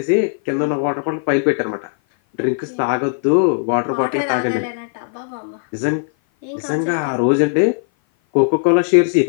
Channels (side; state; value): right; silent; 57 dB below the other